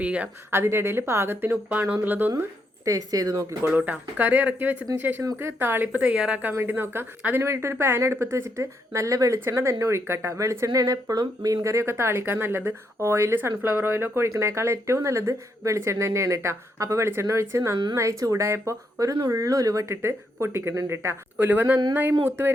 ചെയ്യാം. അതിൻ്റെ ഇടയിൽ പാകത്തിന് ഉപ്പാണോ എന്നുള്ളതൊന്ന് ടേസ്റ്റ് ചെയ്ത് നോക്കിക്കോളൂ കേട്ടോ. കറി ഇറക്കി വെച്ചതിന് ശേഷം നമുക്ക് താളിപ്പ് തയ്യാറാക്കാൻ വേണ്ടി നോക്കാം. അതിന് വേണ്ടിയിട്ട് ഒരു പാൻ അടുപ്പത്ത് വെച്ചിട്ട് നല്ല വെളിച്ചെണ്ണ തന്നെ ഒഴിക്കട്ടോ. വെളിച്ചെണ്ണയാണ് എപ്പോഴും മീൻ കറിയൊക്കെ താളിക്കാൻ നല്ലത്. ഓയിൽ സൺഫ്ലവർ ഓയിലൊക്കെ ഒഴിക്കണേക്കാൾ ഏറ്റവും നല്ലത് വെളിച്ചെണ്ണ തന്നെയാണ് കേട്ടോ. അപ്പോൾ വെളിച്ചെണ്ണ ഒഴിച്ച് നന്നായി ചൂടായപ്പോൾ ഒരു നുള്ളു ഉലുവ ഇട്ടിട്ട് പൊട്ടിക്കുന്നുണ്ട് കേട്ടോ. ഉലുവ നന്നായി മൂത്ത്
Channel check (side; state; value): both; normal; correlation 0.77